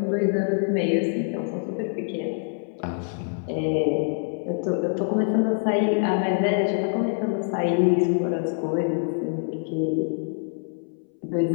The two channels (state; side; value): silent; right; 62 dB below the other